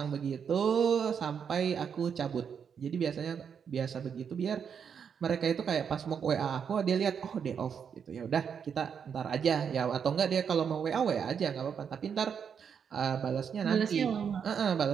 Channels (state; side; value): quieter; left; 7.2 dB